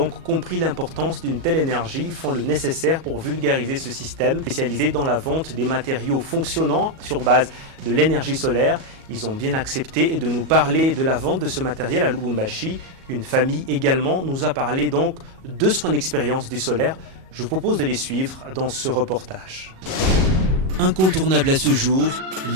compris l'importance d'une telle énergie font le nécessaire pour vulgariser ce système spécialisé dans la vente des matériaux fonctionnant sur base de l'énergie solaire. Ils ont bien accepté de nous parler de la vente de ce matériel à Lubumbashi. Une famille également nous a parlé donc de son expérience du solaire. Je vous propose de les suivre dans ce reportage. Incontournable à ce jour,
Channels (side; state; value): left; late; 37 ms